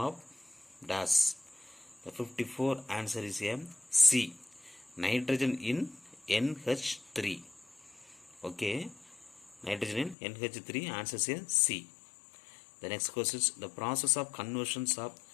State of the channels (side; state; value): right; drops out; at 10.2 s